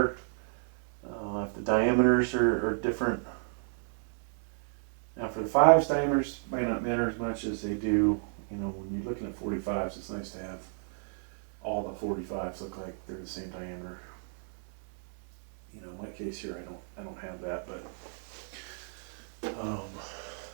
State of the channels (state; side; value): silent; left; 56 dB below the other